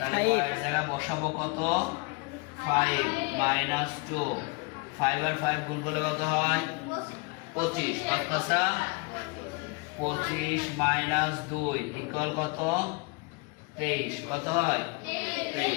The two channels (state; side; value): quieter; right; 28.8 dB